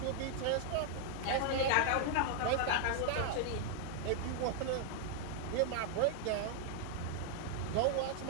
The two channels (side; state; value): both; different; correlation 0.00